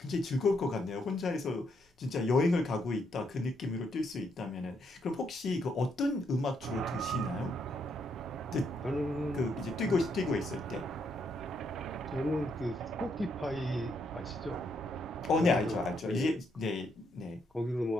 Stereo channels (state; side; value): normal; both; correlation 0.76